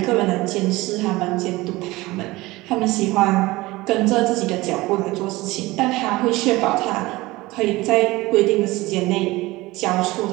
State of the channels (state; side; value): quieter; left; 20.2 dB